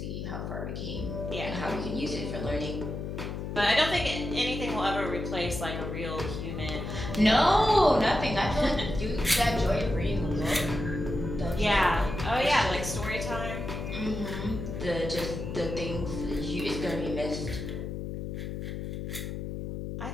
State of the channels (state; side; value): noise; left; hum, 5 dB below the sound